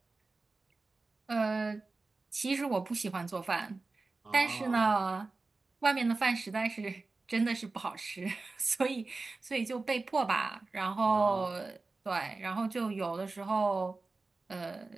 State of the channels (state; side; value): quieter; left; 3.6 dB